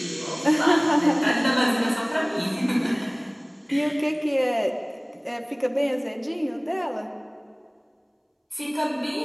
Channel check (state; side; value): identical; both; correlation 1.00